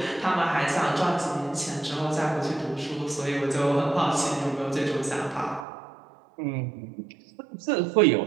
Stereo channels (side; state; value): left; drops out; at 5.7 s